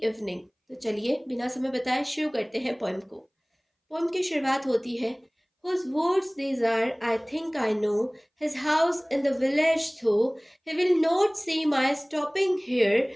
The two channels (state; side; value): identical; both; correlation 1.00